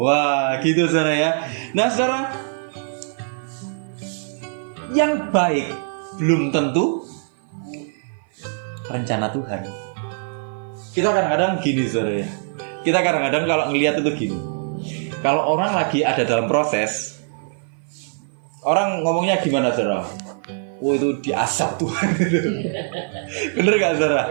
Wah, gitu saudara ya. Nah saudara, yang baik belum tentu rencana Tuhan. Kita kadang-kadang gini saudara ya. Kita kadang-kadang kalau ngelihat itu gini. Kalau orang lagi ada dalam proses, orang ngomongnya gimana saudara? oh itu diasap Tuhan gitu. Bener gak saudara?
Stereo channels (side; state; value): left; silent; 57 dB below the other